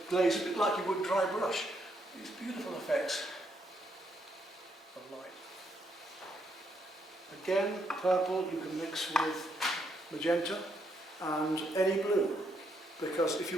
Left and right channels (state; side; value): normal; both; correlation 0.75